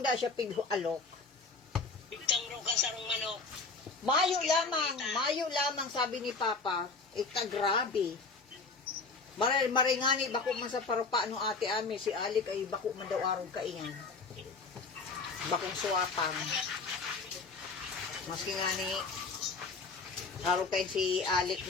siya alok. Bigtang ro ka sarong manok. Mayo lamang, sabi ni Papa, ika grabe. Maringani, bako man sa parupa no ate ami, si Alik ay bako man daw araw kaingan. Bakong suwapang. Maski nga ni, araw kain si Alik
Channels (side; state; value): right; quieter; 4.1 dB